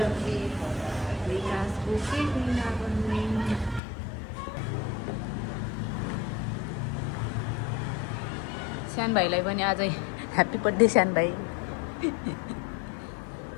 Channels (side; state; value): right; drops out; at 3.8 s